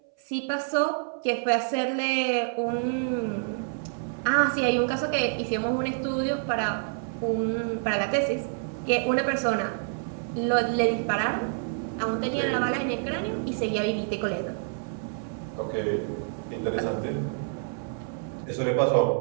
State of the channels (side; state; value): left; silent; 60 dB below the other